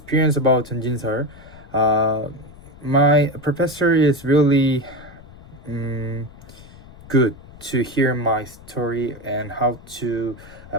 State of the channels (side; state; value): left; noise; rumble, 20 dB below the sound